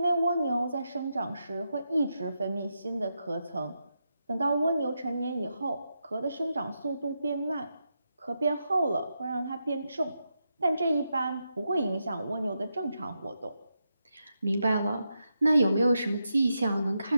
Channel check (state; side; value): inverted; both; correlation -0.86